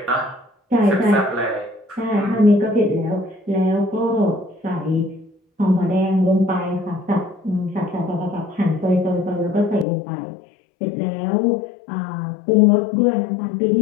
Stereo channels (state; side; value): drops out; right; at 9.9 s